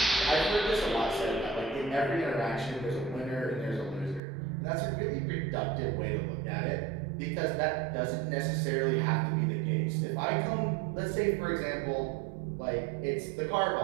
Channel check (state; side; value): drops out; left; at 4.2 s